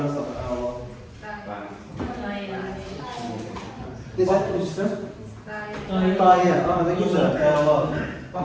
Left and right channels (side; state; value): both; identical; correlation 1.00